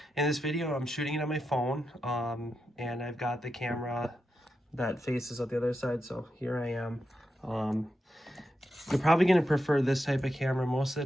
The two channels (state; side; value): normal; both; correlation 0.87